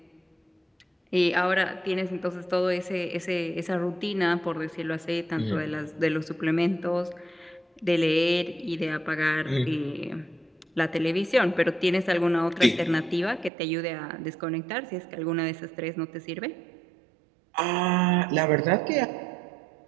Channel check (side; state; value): left; drops out; at 13.5 s